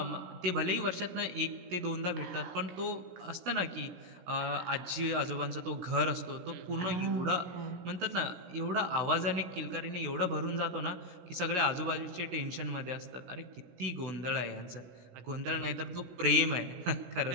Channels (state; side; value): late; left; 17 ms